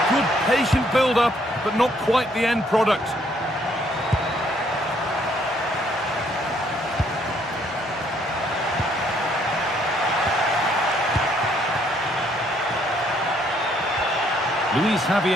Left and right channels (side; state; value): both; normal; correlation 0.67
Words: Good patient build-up, but not quite the end product. Luis